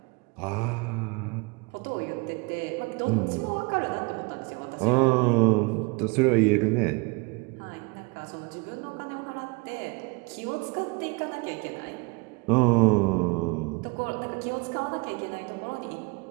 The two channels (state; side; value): quieter; left; 28.7 dB